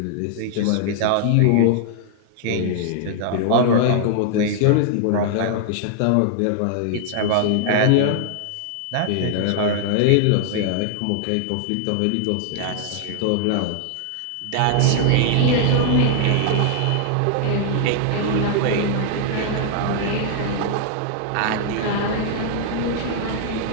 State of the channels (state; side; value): different; both; correlation -0.01